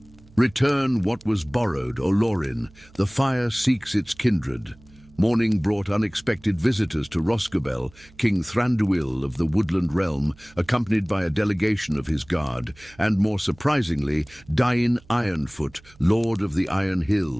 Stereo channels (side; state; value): right; noise; hum, 26 dB below the sound